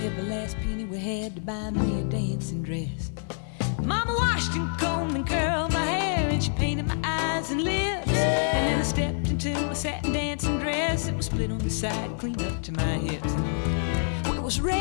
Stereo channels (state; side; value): silent; right; digital silence